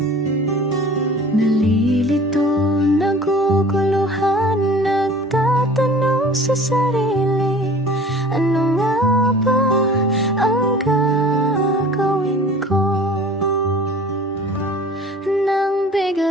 Nalilito, naguguluhan, nagtatanong sa sarili, ano nga ba ang gagawin ko? Nang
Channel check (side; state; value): both; normal; correlation 0.45